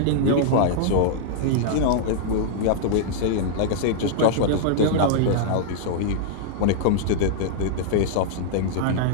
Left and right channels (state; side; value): different; both; correlation -0.01